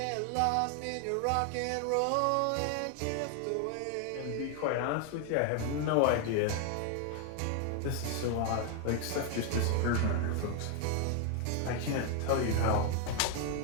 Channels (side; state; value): both; different; correlation 0.01